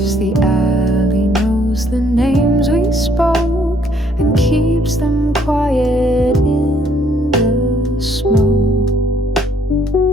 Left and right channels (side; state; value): both; normal; correlation 0.65